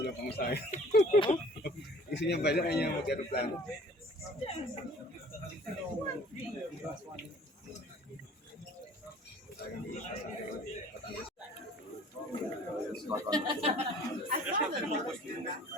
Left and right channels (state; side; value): normal; both; correlation 0.50